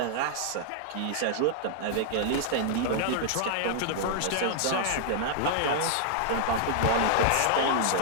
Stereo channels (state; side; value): different; both; correlation -0.01